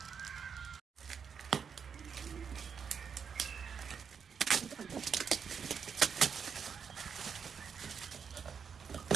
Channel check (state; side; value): quieter; left; 6.6 dB